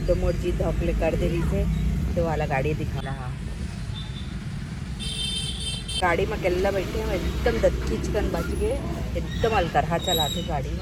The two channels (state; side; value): identical; both; correlation 1.00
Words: मोर जी धोकले कर दे रही से तो वाला गाड़ी दिखा रहा। गाड़ी में अकेला बैठे हैं, एकदम दत्तीचकन बच गए, एकदम अलकरहा चलाते गाड़ी